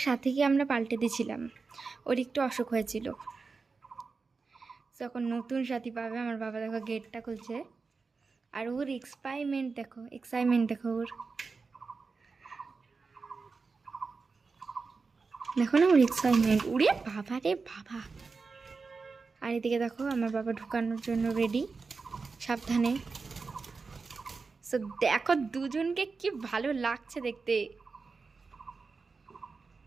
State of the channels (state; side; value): quieter; left; 4.5 dB